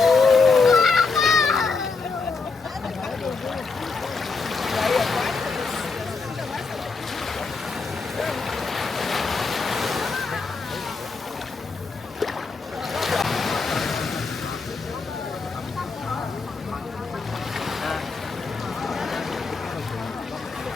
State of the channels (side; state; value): right; quieter; 4.4 dB